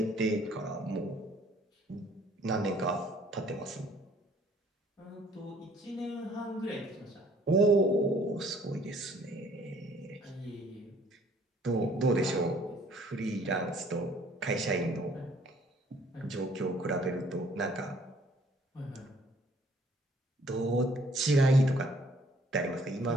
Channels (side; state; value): both; normal; correlation 0.60